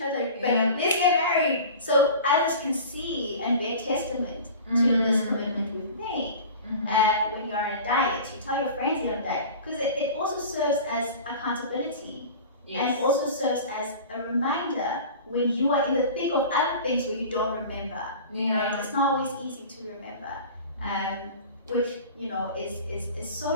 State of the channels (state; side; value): inverted; both; correlation -0.37